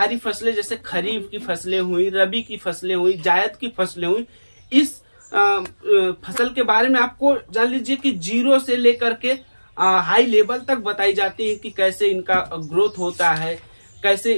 फसलें, जैसे खरीफ की फसलें हुई, रबी की फसलें हुई, जायद की फसलें हुई। इस फसल के बारे में आपको जान लीजिए कि 0 से लेकर के हाई लेवल तक बताई जाती है कि कैसे इनका ग्रोथ होता है, कैसे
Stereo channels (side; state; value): both; inverted; correlation -1.00